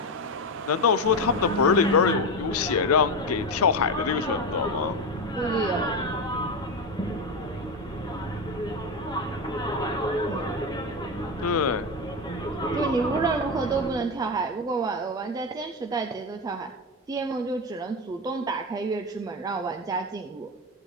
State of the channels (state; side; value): normal; both; correlation 0.15